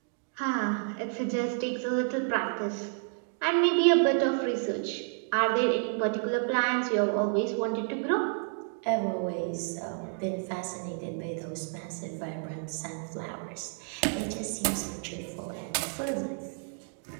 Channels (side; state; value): left; silent; 57 dB below the other